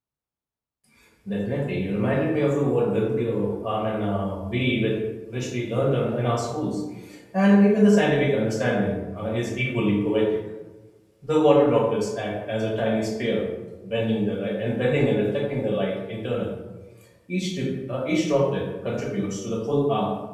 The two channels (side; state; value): both; identical; correlation 1.00